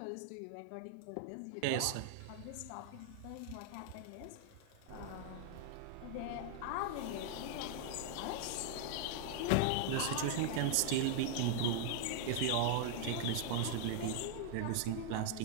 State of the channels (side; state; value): both; different; correlation -0.01